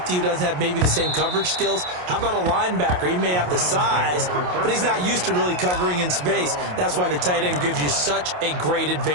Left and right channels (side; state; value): left; late; 28 ms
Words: who doesn't have maybe the same coverage skills? How about a linebacker? He may have the size, but he's not used to really covering in space. That's why the tight end gives you such a great